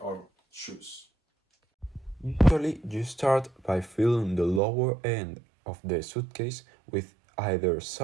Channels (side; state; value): left; drops out; at 4.6 s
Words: our shoes. Usually, you start by filling the lower end of the suitcase with either